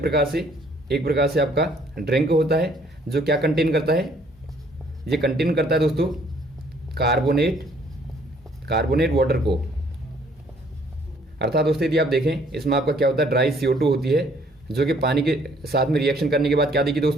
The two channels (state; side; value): normal; both; correlation 0.62